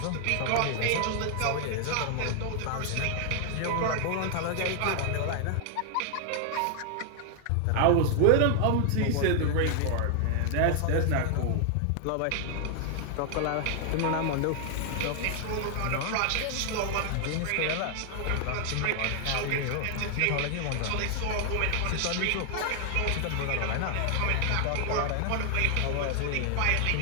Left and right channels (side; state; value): both; different; correlation 0.00